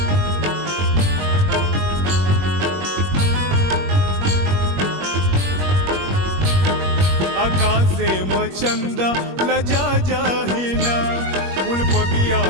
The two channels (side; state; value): left; late; 21 ms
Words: आकाशे मचंदा लजा जाहिना, फूल बगिया